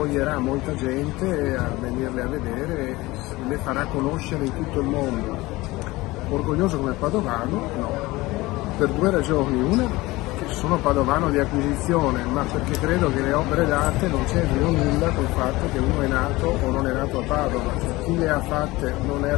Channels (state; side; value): quieter; right; 20.4 dB